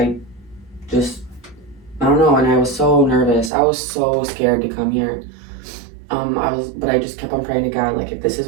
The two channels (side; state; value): left; drops out; at 3.5 s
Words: don't know, and I was so nervous. I was so scared to come here. But I just kept on praying to God, like, if this is